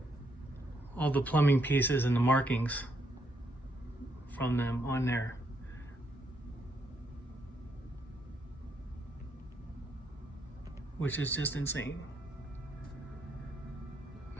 all the plumbing pieces and the markings from them on there. Which is just insane.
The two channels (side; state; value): both; normal; correlation 0.75